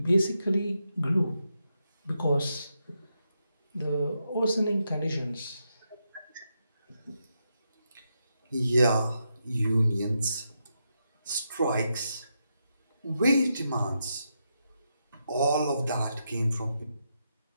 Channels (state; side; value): inverted; both; correlation -0.84